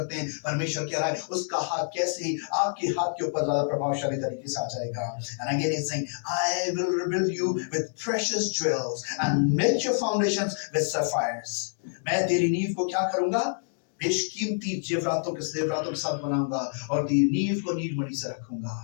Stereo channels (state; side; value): silent; right; digital silence